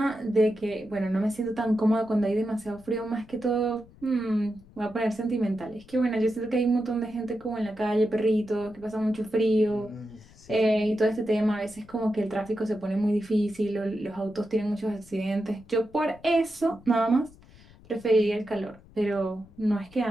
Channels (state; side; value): noise; left; rumble, 24 dB below the sound